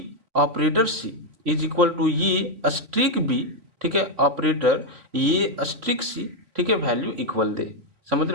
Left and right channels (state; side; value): late; left; 3.3 ms